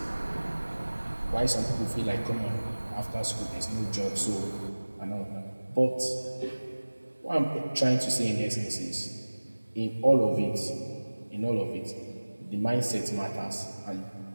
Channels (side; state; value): both; inverted; correlation -1.00